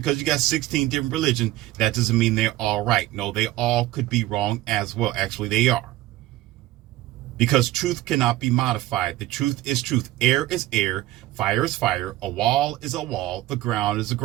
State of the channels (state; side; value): quieter; left; 16.3 dB